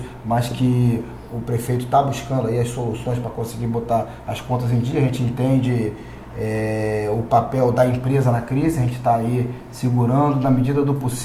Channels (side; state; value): both; identical; correlation 1.00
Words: mas que o prefeito está buscando aí as soluções para conseguir botar as contas em dia. A gente entende o papel da empresa na crise, a gente está aí segurando, na medida do